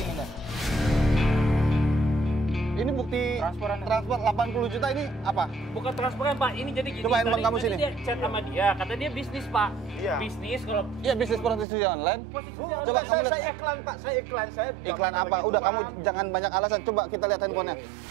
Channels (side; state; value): left; drops out; at 11.7 s